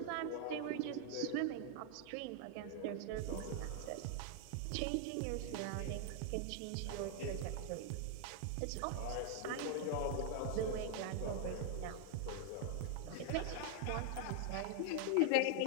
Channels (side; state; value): both; different; correlation 0.00